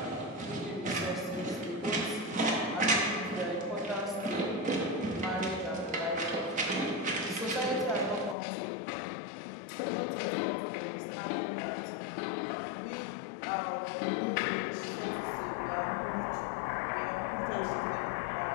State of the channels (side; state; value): right; drops out; at 8.3 s